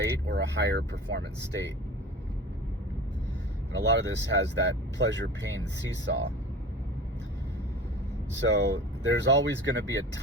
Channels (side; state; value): both; normal; correlation 0.37